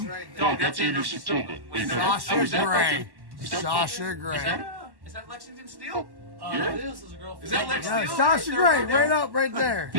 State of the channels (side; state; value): left; late; 1.1 ms